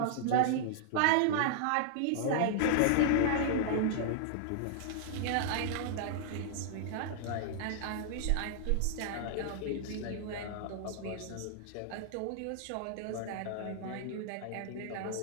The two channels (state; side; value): different; both; correlation -0.01